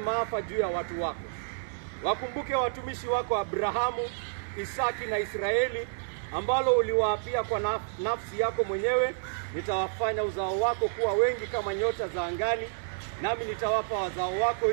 juu ya watu wako. Wakumbuke watumishi wako Abrahamu, Isaki na Israeli, ambalo uliwaapia kwa nafsi yako mwenyewe, nitawafanya uzao wako kuwa wengi kama nyota za angani, nami nitawapa wazao wako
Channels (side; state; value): left; silent; digital silence